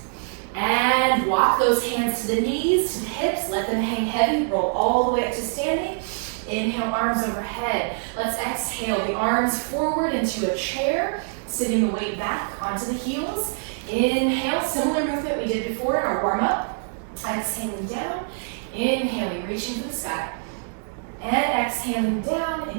And walk those hands to the knees, to the hips, let them hang heavy, roll all the way up to standing. Inhale, arms overhead. Let's exhale the arms forward into a chair, sitting the weight back onto the heels. Inhale, similar movement we did before in our warm-up. Exhaling down, inhaling, reaching for the sky. And exhaling down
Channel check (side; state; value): left; silent; 58 dB below the other